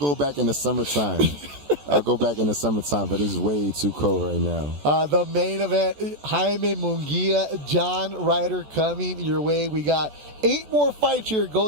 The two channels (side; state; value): left; late; 14 ms